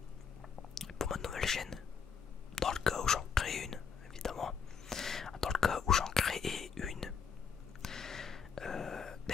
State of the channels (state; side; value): quieter; right; 6.3 dB